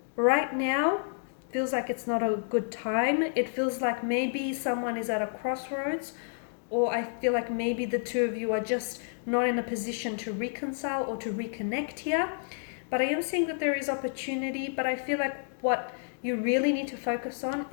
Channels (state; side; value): silent; right; digital silence